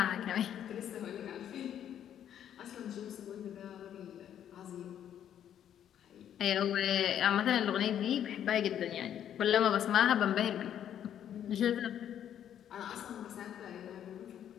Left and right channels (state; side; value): quieter; right; 10.0 dB